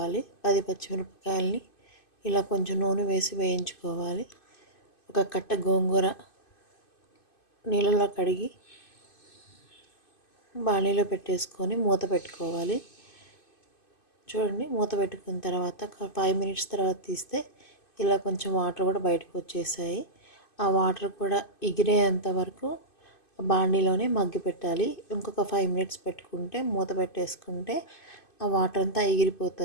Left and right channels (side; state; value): right; late; 2.5 ms